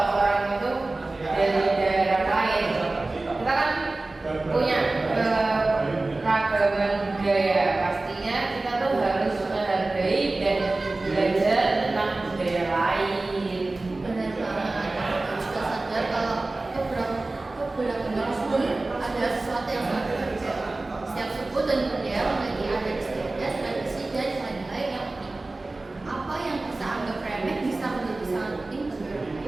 dan budaya memiliki adat istiadat, tradisi, dan nilai-nilai yang unik. Apa yang bisa anggap remeh bisa menjadi sangat penting bagi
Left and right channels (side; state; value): left; quieter; 3.1 dB